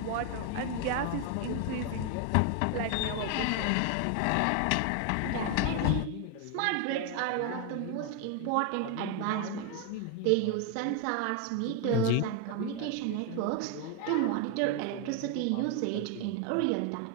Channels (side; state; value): both; different; correlation 0.01